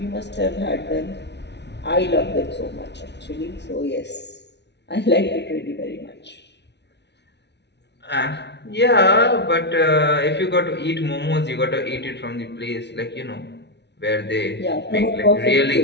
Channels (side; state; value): right; late; 0.50 ms